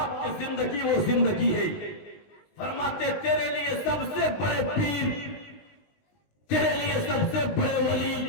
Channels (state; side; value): late; right; 19 ms